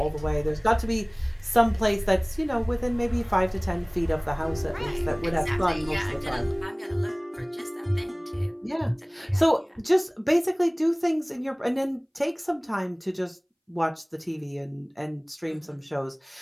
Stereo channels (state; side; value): identical; both; correlation 1.00